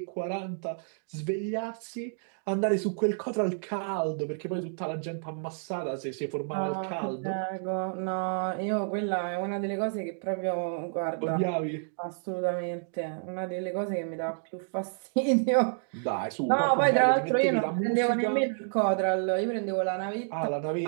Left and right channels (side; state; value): left; silent; digital silence